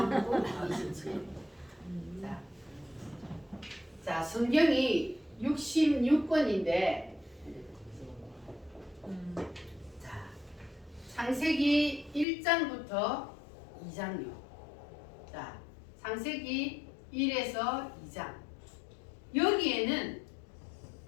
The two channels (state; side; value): drops out; right; at 12.2 s